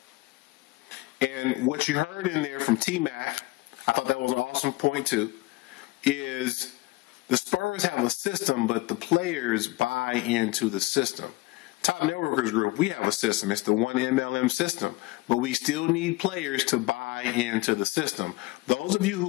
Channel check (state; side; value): quieter; right; 20.2 dB